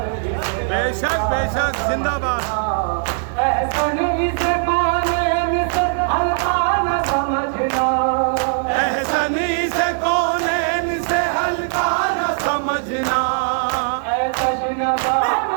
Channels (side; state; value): left; silent; digital silence